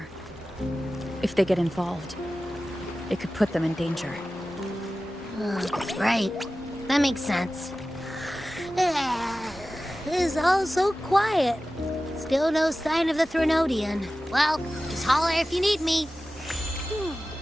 If they get involved, it could put them in danger. Right. That makes sense. It's all so quiet. Still no sign of the Threnodian. Well, just holler if you need me.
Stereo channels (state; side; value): normal; both; correlation 0.95